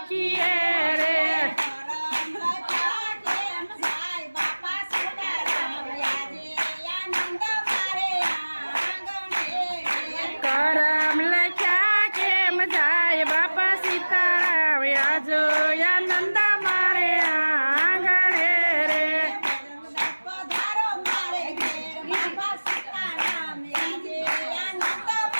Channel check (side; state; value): both; inverted; correlation -1.00